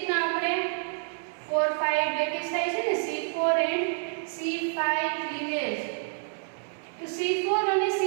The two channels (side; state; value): left; silent; 59 dB below the other